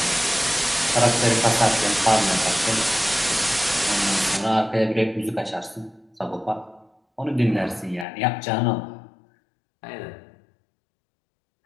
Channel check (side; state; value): right; drops out; at 8.1 s